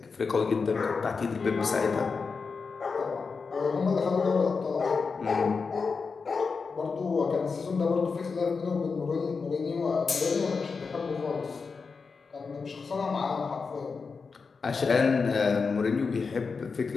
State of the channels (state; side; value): quieter; right; 4.9 dB